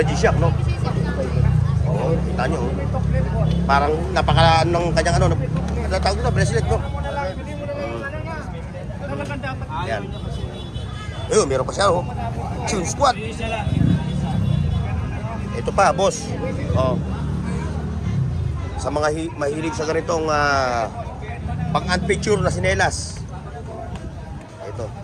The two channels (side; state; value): both; identical; correlation 1.00